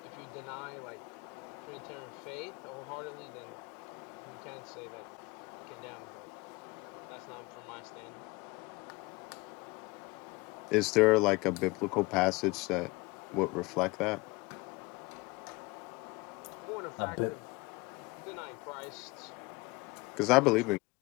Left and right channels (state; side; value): quieter; right; 24.2 dB